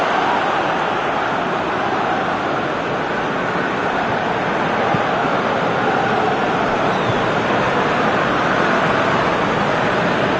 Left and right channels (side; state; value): both; identical; correlation 1.00